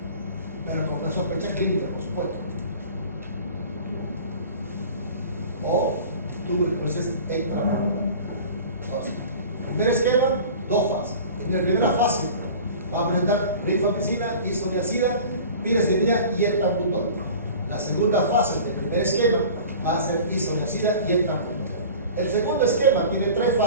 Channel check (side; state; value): both; inverted; correlation -0.40